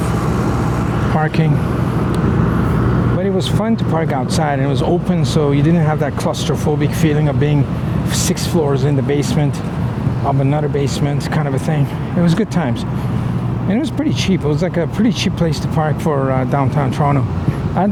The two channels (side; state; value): both; identical; correlation 1.00